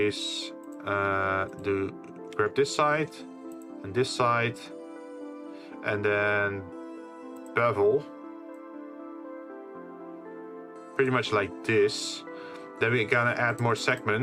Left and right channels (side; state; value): both; identical; correlation 1.00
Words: grab this side and this side, and then bevel, pretty much like this. Then we're gonna add more